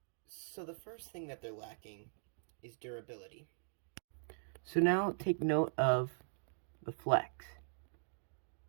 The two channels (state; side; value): silent; left; digital silence